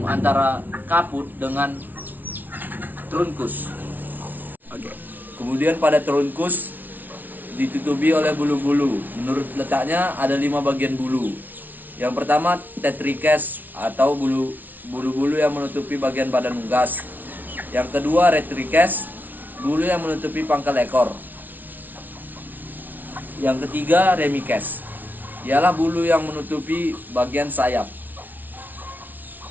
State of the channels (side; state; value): left; late; 0.083 ms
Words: antara kaput dengan trunkus. Kemudian pada trunkus ditutupi oleh bulu-bulu. Menurut letaknya ada 5 bagian bulu. Yang pertama tetrikes atau bulu-bulu yang menutupi bagian badan unggas. Yang kedua retrikes, bulu yang menutupi pangkal ekor. Yang ketiga remikes, ialah bulu yang menutupi bagian sayap.